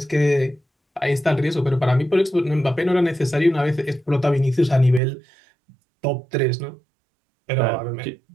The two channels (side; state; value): left; drops out; at 5.0 s